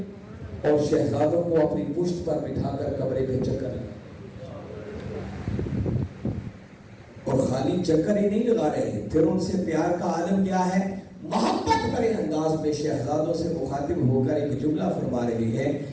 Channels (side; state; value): both; identical; correlation 1.00